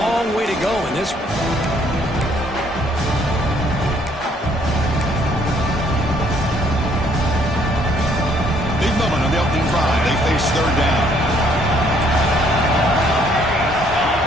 way to go in this one. Moment on the opening drive. They face 3rd down.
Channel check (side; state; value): both; normal; correlation 0.65